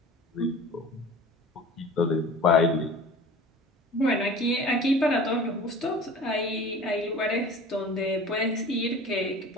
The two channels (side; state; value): both; normal; correlation 0.40